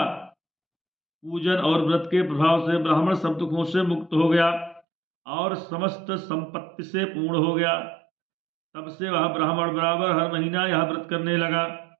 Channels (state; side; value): drops out; left; at 4.8 s